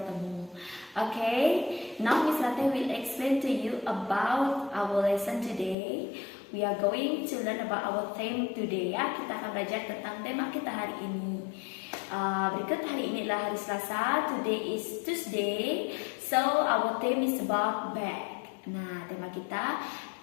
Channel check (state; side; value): drops out; right; at 5.8 s